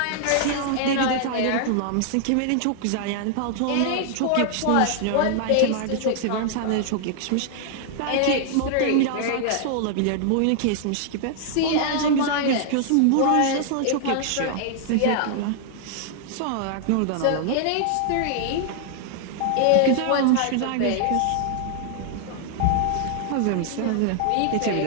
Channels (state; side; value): different; both; correlation 0.00